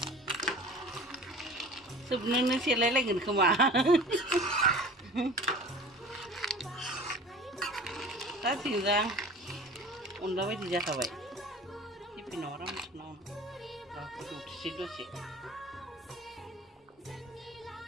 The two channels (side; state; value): both; normal; correlation 0.41